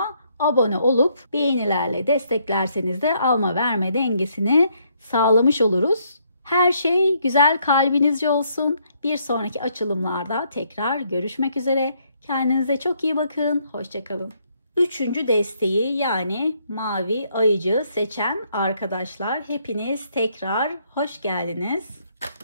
abone olup beğenilerle desteklerseniz de alma verme dengesini sağlamış oluruz. Her şey güzel kalbinizce olsun. Bir sonraki açılımlarda tekrar görüşmek üzere. Kendinize çok iyi bakın. Hoşça kalın. Üçüncü desteği yani mavi ayıcığı seçen arkadaşlar hepiniz tekrar hoş geldiniz.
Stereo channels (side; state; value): both; inverted; correlation -0.71